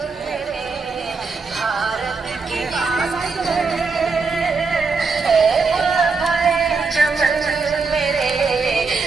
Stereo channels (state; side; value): quieter; left; 4.4 dB